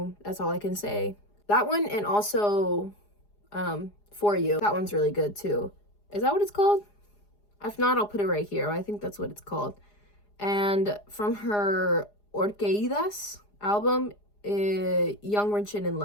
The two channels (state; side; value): late; right; 4.9 ms